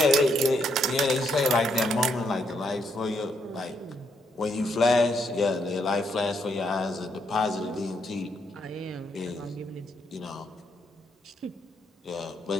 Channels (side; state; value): both; normal; correlation 0.75